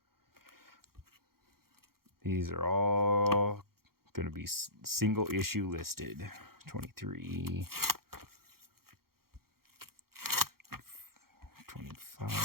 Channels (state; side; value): late; left; 0.94 ms